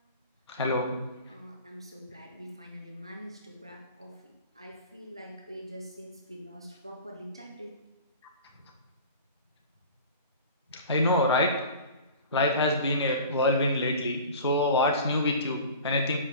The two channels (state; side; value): inverted; both; correlation -0.39